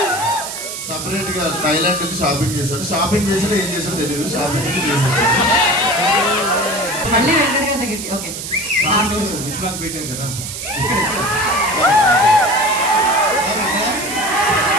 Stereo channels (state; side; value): noise; right; hiss, 7 dB below the sound